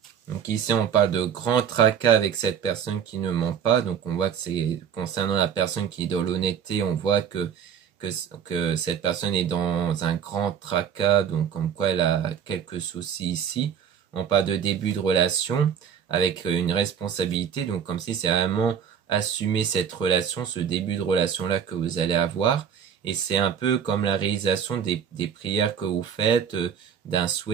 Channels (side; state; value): left; quieter; 8.0 dB